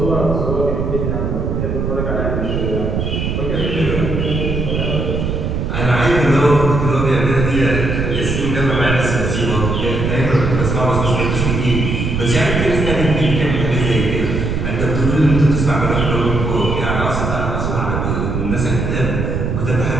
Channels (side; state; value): right; noise; rumble, 1 dB below the sound